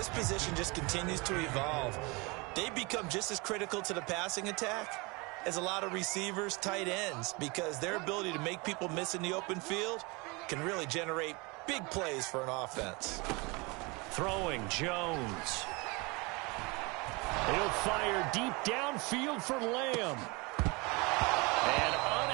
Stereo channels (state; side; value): quieter; left; 27.1 dB